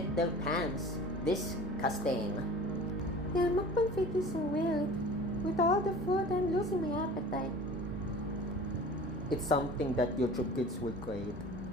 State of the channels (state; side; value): normal; both; correlation 0.41